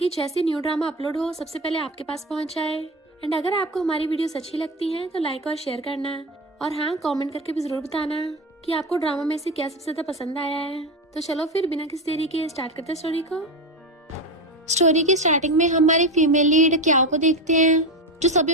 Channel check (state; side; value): normal; both; correlation 0.19